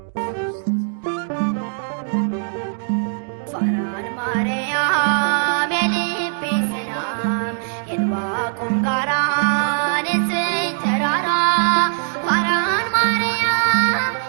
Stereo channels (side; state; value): left; silent; digital silence